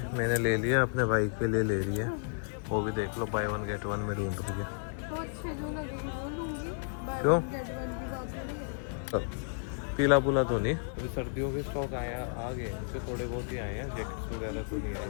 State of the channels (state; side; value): silent; right; 56 dB below the other